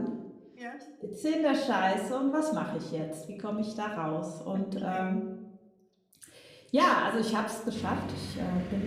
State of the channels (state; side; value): identical; both; correlation 1.00